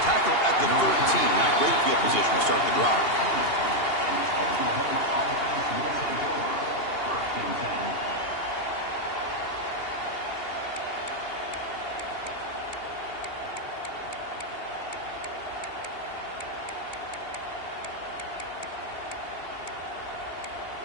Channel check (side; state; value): right; late; 2.8 ms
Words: Tackle at the 13, not great field position to start the drive.